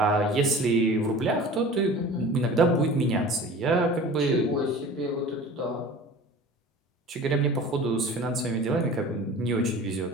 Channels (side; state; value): both; normal; correlation 0.41